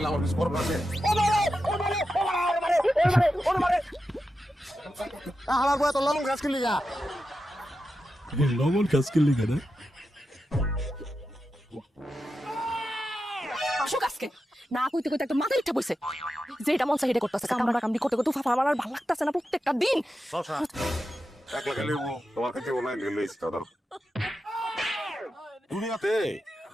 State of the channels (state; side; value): normal; both; correlation 0.90